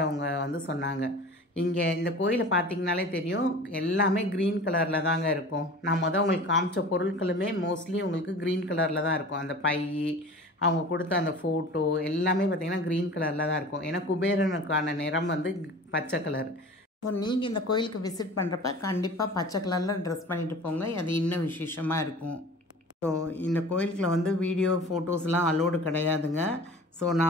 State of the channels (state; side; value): normal; both; correlation 0.40